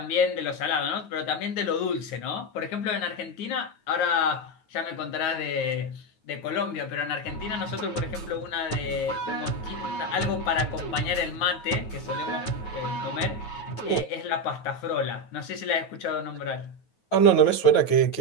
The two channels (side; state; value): right; late; 9.3 ms